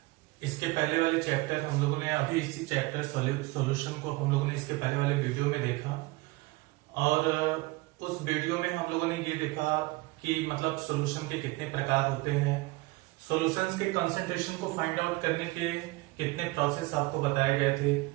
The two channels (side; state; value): left; quieter; 22.6 dB